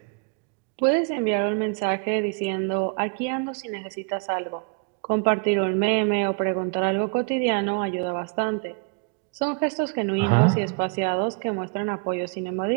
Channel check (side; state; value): left; quieter; 34.8 dB